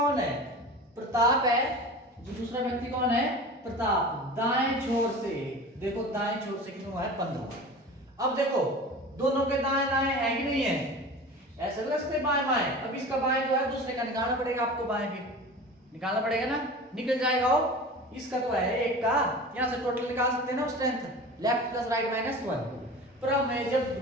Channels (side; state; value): both; normal; correlation 0.35